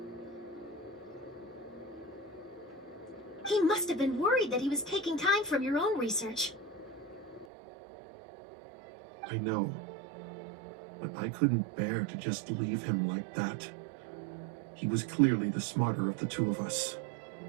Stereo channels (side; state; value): left; drops out; at 7.5 s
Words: He must have been worried that he was taking time from your own research. I know, but I couldn't bear to just leave him like that. He was clearly the smarter of the two of us.